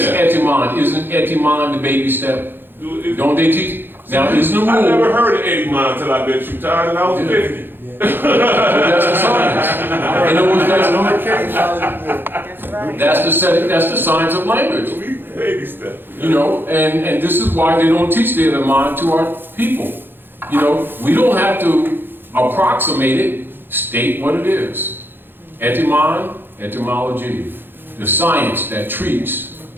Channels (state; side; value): late; left; 0.10 ms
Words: etymon. Isn't etymon the baby step? Don't they teach? Now, is the rule? I never heard of etymon until I met you, Todd, and I was 50. That's the science. And it was that's the science of language. Baby steps. You know, and this is why they don't teach the etymon to our people. You know, we don't have to approximate it, state what it is. Etymon, etymology, the science that treats